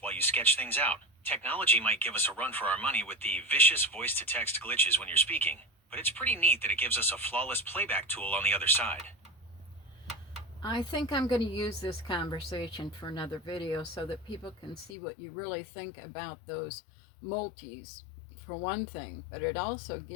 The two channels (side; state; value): right; drops out; at 15.0 s